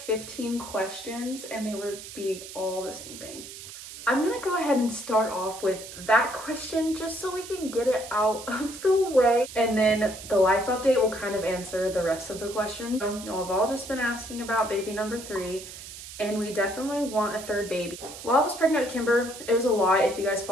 questions and they were all the same thing. I'm gonna go ahead and start off with that question just so we can get it out of the way. And then the life update will kind of answer the rest of the questions. So, y'all have all just been asking about baby number 3, and we definitely want a 3rd baby. While I was pregnant with Kimber, it was a lot. If you guys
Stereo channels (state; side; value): noise; right; hiss, 13 dB below the sound